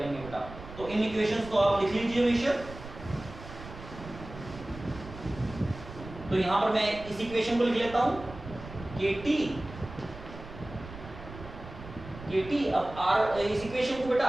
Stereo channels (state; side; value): noise; right; rumble, 14 dB below the sound